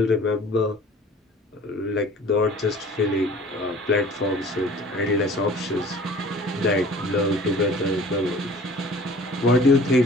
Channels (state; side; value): normal; both; correlation 0.47